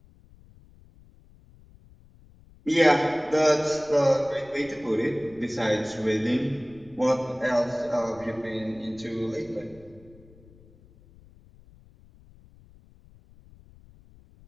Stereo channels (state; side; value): noise; left; rumble, 25 dB below the sound